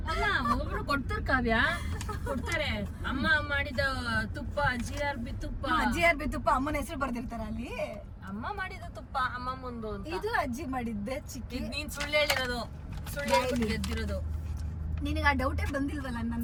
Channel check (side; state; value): both; identical; correlation 1.00